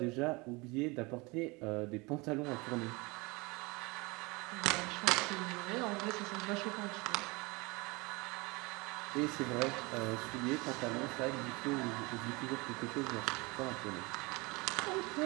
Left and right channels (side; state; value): left; quieter; 25.6 dB